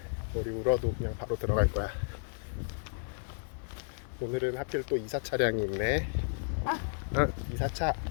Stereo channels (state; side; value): silent; right; digital silence